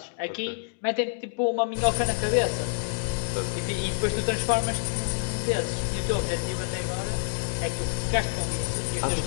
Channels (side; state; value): right; silent; digital silence